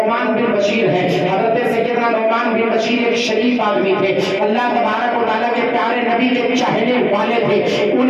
بن بشیر ہیں. حضرت سیدنا نعمان بن بشیر ایک شریف آدمی تھے, اللہ تبارک و تعالیٰ کے پیارے نبی کے چاہنے والے تھے.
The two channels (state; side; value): identical; both; correlation 1.00